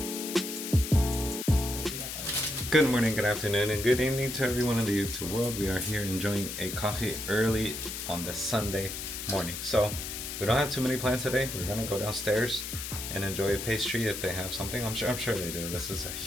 Good morning, good afternoon, and good evening to everyone in the YouTube world. We are here enjoying a coffee early on the Sunday morning. So we don't have too many plans today. We're gonna go downstairs and enjoy a pastry if they have something. I'm sure they do. This is a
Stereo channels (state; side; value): noise; left; hiss, 6 dB below the sound